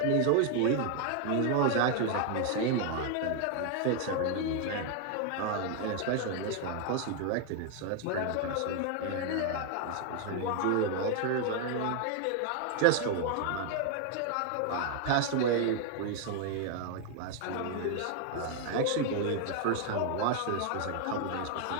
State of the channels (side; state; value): both; different; correlation 0.00